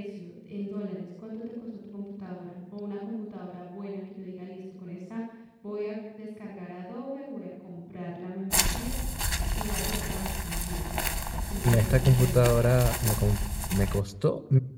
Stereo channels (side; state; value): both; identical; correlation 1.00